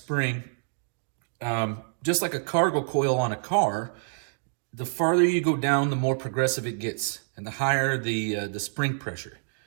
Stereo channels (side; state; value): left; silent; digital silence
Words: just like a cargo coil on a car, the farther you go down, the more progressive it gets and the higher the spring pressure.